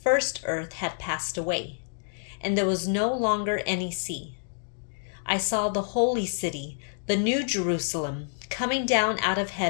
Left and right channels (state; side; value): silent; right; digital silence